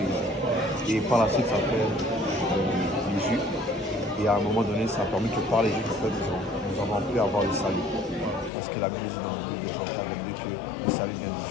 Et par la suite, ça fait les Juifs. Et à un moment donné, ça a permis que par les Juifs, en fait, nous avons pu avoir le salut. Parce que la Bible dit dans le livre de Jean 4 que le salut vient du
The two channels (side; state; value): right; drops out; at 8.5 s